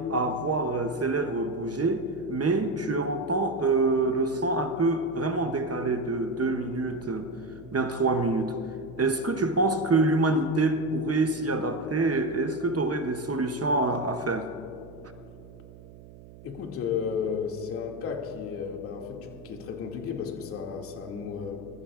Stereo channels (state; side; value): noise; right; hum, 19 dB below the sound